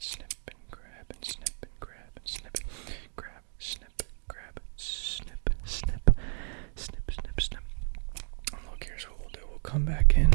and grab and snip and grab and snip. Grab, snip, grab, snip, snip, snip, snip, snip. Look, here's what we'll do. We'll come back in.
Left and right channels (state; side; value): silent; left; 56 dB below the other